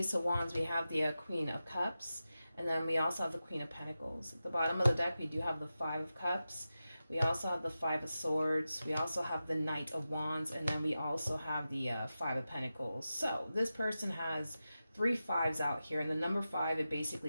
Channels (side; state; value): both; inverted; correlation -0.93